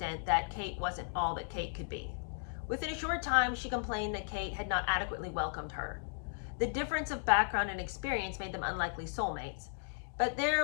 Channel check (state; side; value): silent; right; digital silence